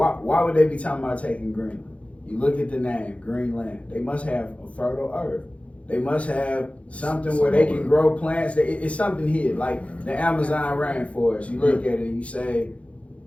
would they be talking about taking Greenland? You look at the name, Greenland. They must have a fertile earth. They must have something where they can grow plants. It's something here, like the Amazon rainforest. You look at it and you say,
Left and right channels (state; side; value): late; right; 0.063 ms